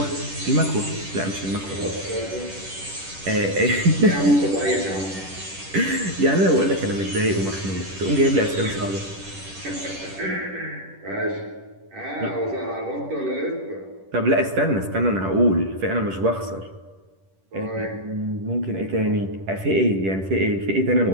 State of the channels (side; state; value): left; late; 10 ms